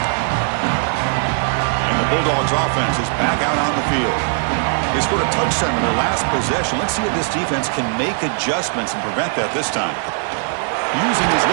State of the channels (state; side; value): silent; left; 57 dB below the other